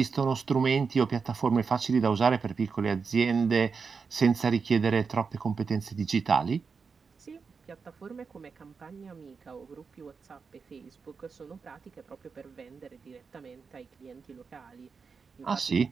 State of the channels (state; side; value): quieter; left; 5.3 dB